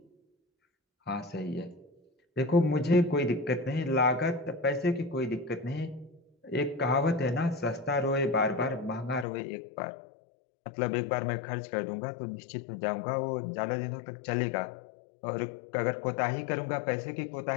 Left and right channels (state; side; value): drops out; right; at 9.2 s